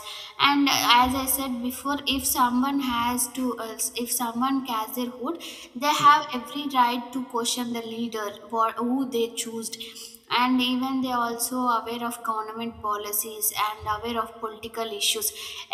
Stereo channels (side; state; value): both; identical; correlation 1.00